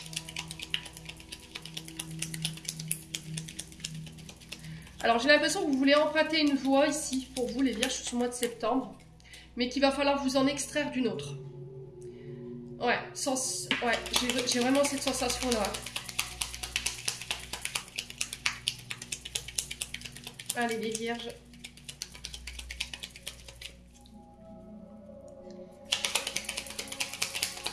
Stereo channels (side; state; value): both; identical; correlation 1.00